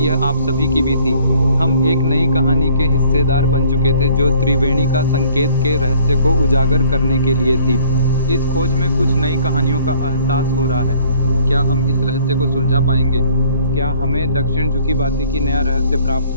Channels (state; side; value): inverted; both; correlation -0.58